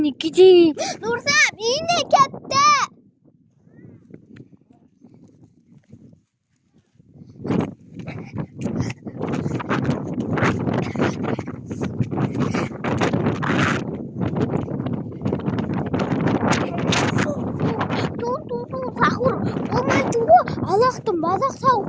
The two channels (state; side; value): identical; both; correlation 1.00